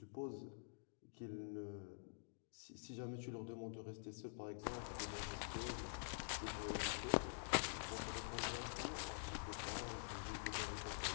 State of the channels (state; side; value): silent; right; digital silence